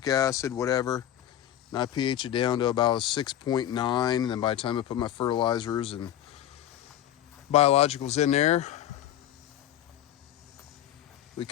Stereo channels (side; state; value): right; quieter; 11.7 dB